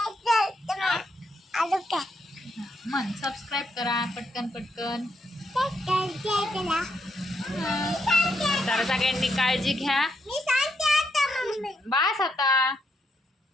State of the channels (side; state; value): both; normal; correlation 0.78